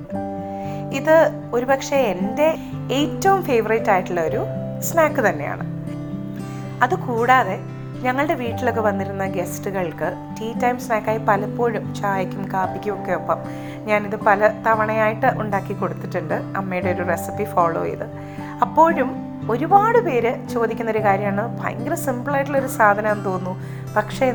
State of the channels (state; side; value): identical; both; correlation 1.00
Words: ഇത് ഒരുപക്ഷെ എൻ്റെ ഏറ്റവും ഫേവറേറ്റ് ആയിട്ടുള്ള ഒരു സ്നാക്ക് തന്നെയാണ്. അതുകൂടാതെ ഞങ്ങളുടെ വീട്ടിലൊക്കെ വന്നിരുന്ന ഗസ്റ്റുകൾക്ക് ടീ ടൈം സ്നാക്കായി പലപ്പോഴും ചായക്കും കാപ്പിക്കും ഒക്കെ ഒപ്പം ഞാനിത് പല തവണയായിട്ട് ഉണ്ടാക്കി കൊടുത്തിട്ടുണ്ട്, അമ്മയുടെ ഒരു റെസിപ്പി ഫോളോ ചെയ്ത്. അപ്പോഴും ഒരുപാട് പേര് ചോദിക്കുന്നൊരു കാര്യമാണ്, ഭയങ്കര സിമ്പിളായിട്ടുള്ളൊരു സാധനമാണെന്ന് തോന്നുന്നു, പക്ഷേ